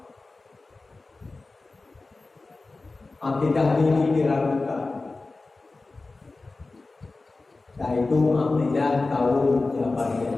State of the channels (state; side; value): quieter; right; 3.5 dB